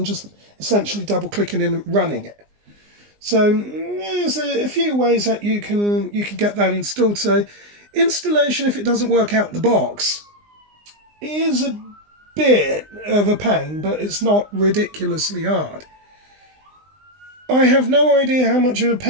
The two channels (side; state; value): left; late; 20 ms